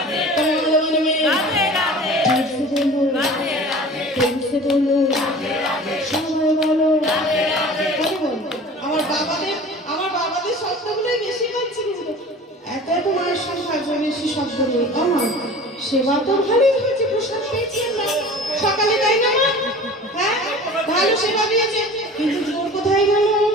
বৃন্দাবন মে রাধে রাধে জোরসে বলো রাধে রাধে জোরসে বলো রাধে রাধে সবাই বলো রাধে রাধে বলো আমার বাবাদের শব্দগুলোই বেশি হচ্ছে কিন্তু এত এত মায়ের সংখ্যা বেশি শব্দ নেই আমার সেবা তো ভালোই হয়েছে প্রসাদ পেয়েছি আমরা সকালে তাই না মা হ্যাঁ ভালো সেবা দিয়েছে কিন্তু জোর কোথায় গেল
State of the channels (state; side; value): normal; both; correlation 0.41